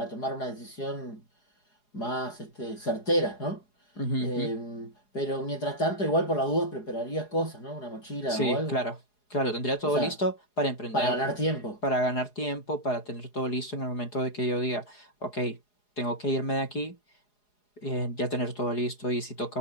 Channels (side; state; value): right; late; 4.8 ms